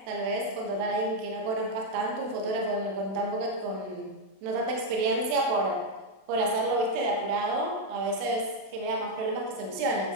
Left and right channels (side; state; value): left; late; 32 ms